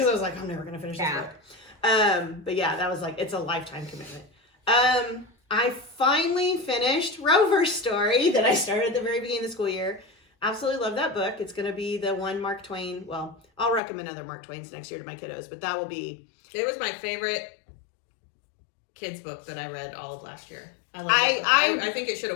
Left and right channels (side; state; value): right; drops out; at 13.8 s